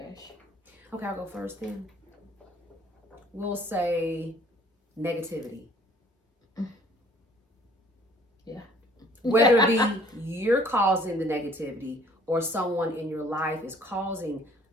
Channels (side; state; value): both; normal; correlation 0.57